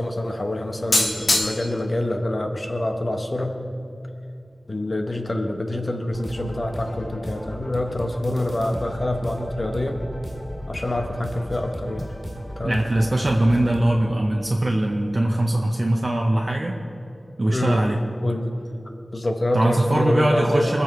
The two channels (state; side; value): normal; both; correlation 0.97